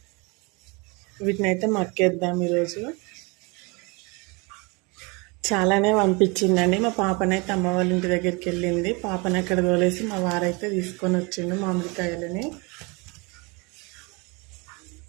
వీటినైతే మక్కేద్దాం ఈరోజు. చాలానే పంపించిందండి. మా పాపనైతే అమ్మ వాళ్ళ ఇంటి దగ్గరికి వెళ్ళింది. పాపని అక్కడ తోలేసి మా వారైతే తీసుకొని వచ్చిండు మామిడికాయలని.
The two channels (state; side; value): quieter; left; 28.6 dB